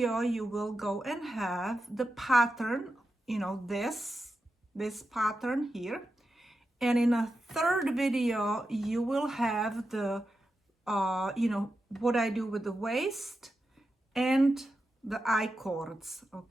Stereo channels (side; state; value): both; normal; correlation 0.90